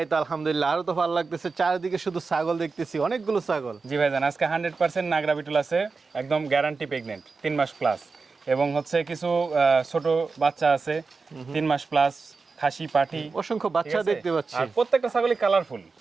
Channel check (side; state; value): left; quieter; 4.4 dB